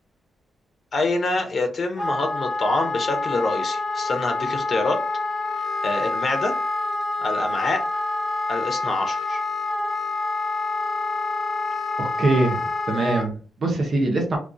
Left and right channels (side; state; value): both; normal; correlation 0.86